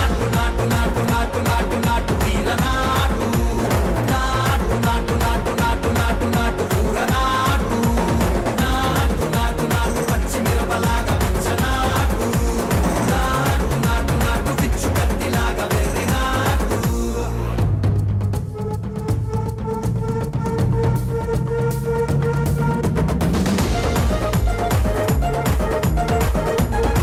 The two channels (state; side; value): identical; both; correlation 1.00